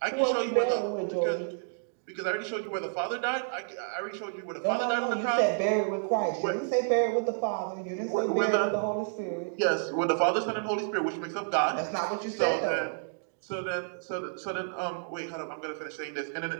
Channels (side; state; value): left; silent; digital silence